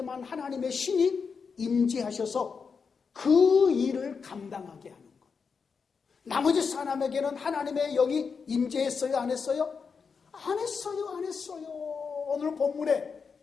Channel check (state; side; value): quieter; right; 5.6 dB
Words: 하나님의 신이 임재하셔서 그 일을 감당하게 하는 것. 나머지 사람에게는 하나님의 영이 임재했어요? 안 했어요? 안 했어요. 안 했어요. 오늘 본문에